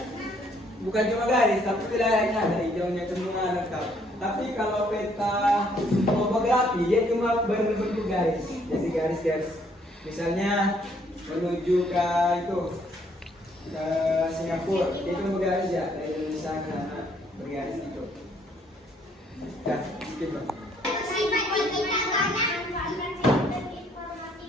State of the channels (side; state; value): both; normal; correlation 0.66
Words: bukan cuma garis, tapi wilayahnya ada hijaunya semua lengkap. Tapi kalau peta topografi dia cuma berbentuk garis. Jadi garis-garis. Misalnya menuju ke itu ke Singapura, dia cuma bergaris ya dari Indonesia ke sana bergaris itu. Ya, gitu.